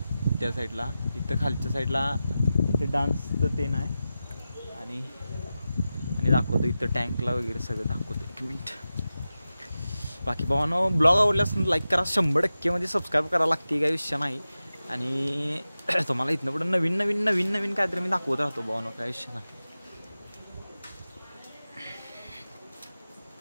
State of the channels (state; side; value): inverted; both; correlation -0.93